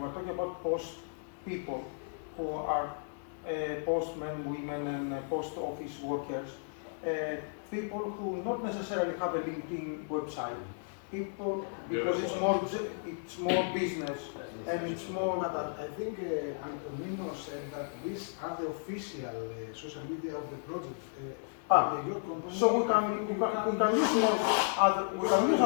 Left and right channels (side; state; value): right; silent; digital silence